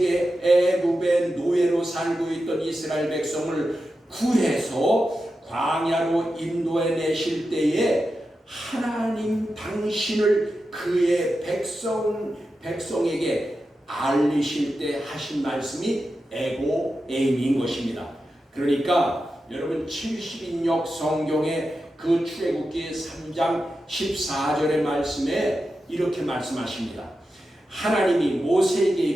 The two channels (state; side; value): normal; both; correlation 0.90